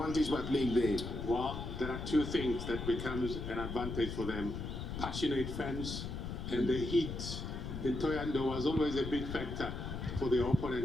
by playing there. Well, there are 2 things that becomes an advantage for them. Passionate fans, and the heat in Toyando was always a big factor for the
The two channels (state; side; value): noise; left; rumble, 5 dB below the sound